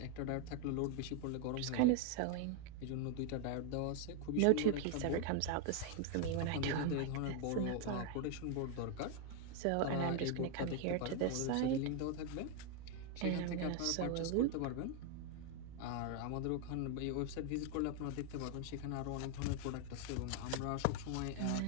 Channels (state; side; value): different; both; correlation 0.01